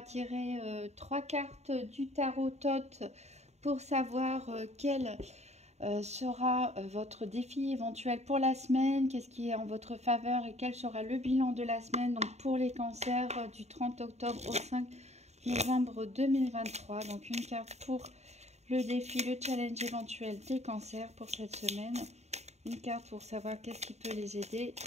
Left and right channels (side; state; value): left; late; 0.32 ms